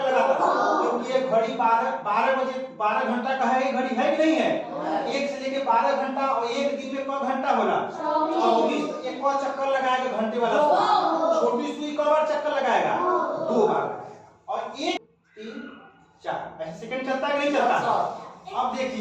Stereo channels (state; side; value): identical; both; correlation 1.00